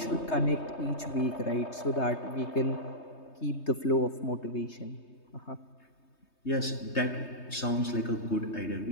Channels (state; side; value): late; right; 3.2 ms